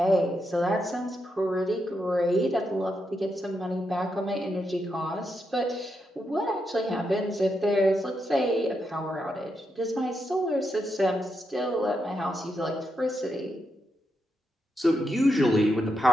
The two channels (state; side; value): normal; both; correlation 0.83